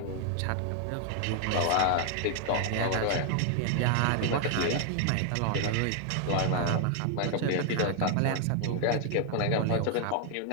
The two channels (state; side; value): different; both; correlation 0.00